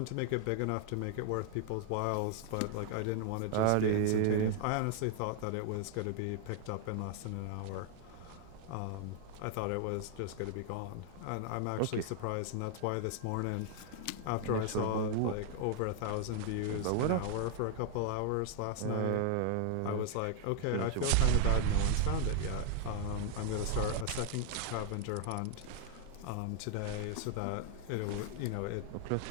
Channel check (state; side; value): different; both; correlation 0.00